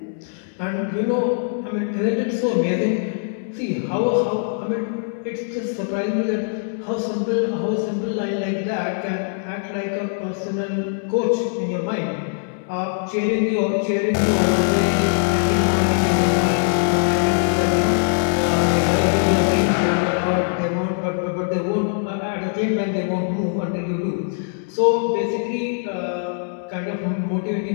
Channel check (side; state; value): right; silent; digital silence